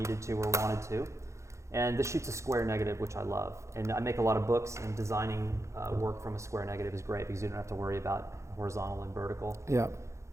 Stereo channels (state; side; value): late; left; 0.14 ms